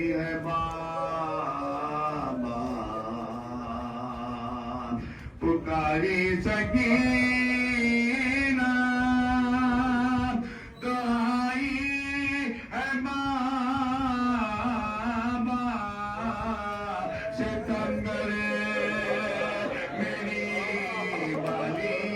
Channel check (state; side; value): identical; both; correlation 1.00